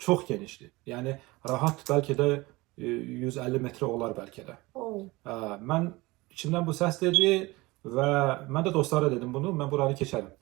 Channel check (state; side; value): quieter; left; 21.9 dB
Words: genişdir. Yəni rahat bəlkə də 150 metrə olar bəlkə də. Mən içimdən bu səs dedi və mən də dostlara dedim bunu, mən buranı keçərəm.